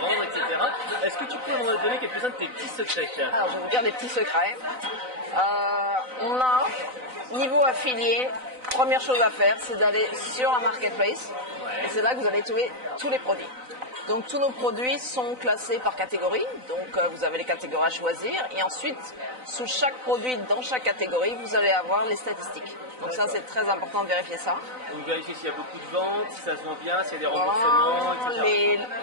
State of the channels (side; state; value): left; late; 4.0 ms